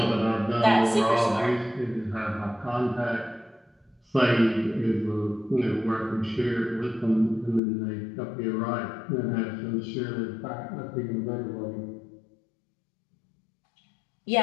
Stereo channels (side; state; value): right; drops out; at 7.6 s